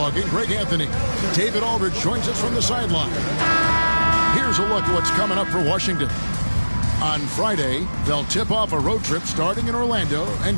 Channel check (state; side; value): inverted; both; correlation -1.00